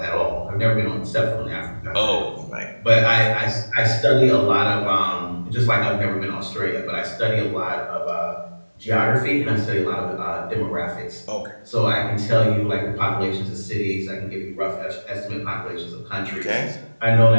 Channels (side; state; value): both; inverted; correlation -1.00